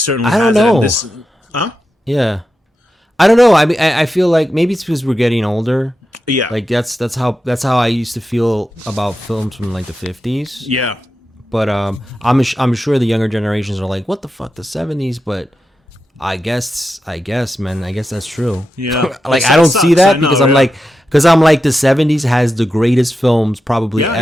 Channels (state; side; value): normal; both; correlation 0.89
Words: has it. Yeah. I don't know. I mean, I feel like maybe it's because we're getting older. Yeah, like that's how I used to feel about films from like the 50s. Yeah, but I'm sure the younger generations are like, what the fuck, the 70s? But I guess, man, I guess that's true. Yeah, like I don't see that because I'm like the 70s has the greatest films probably